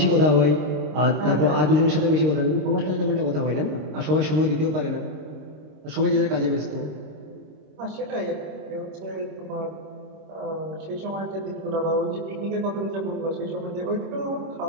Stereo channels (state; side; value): late; left; 26 ms